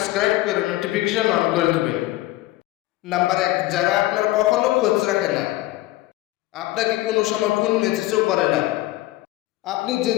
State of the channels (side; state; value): right; quieter; 17.2 dB